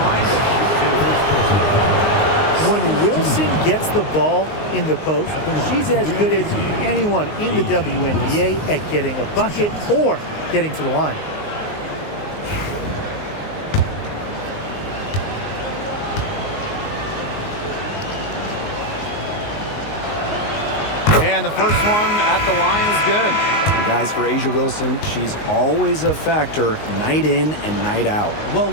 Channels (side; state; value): right; late; 19 ms